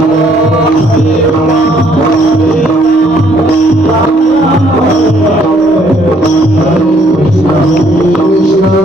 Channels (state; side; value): normal; both; correlation 0.66